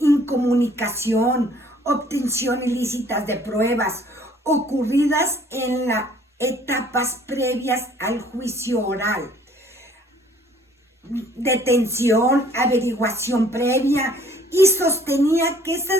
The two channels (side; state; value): both; normal; correlation 0.57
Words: obtención ilícitas de pruebas ocurridas en las etapas previas al juicio oral, detención, averiguación previa, y sostenía que